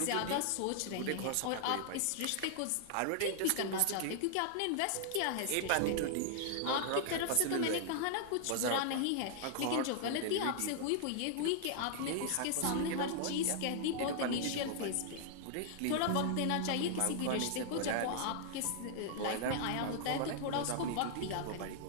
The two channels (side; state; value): both; different; correlation 0.00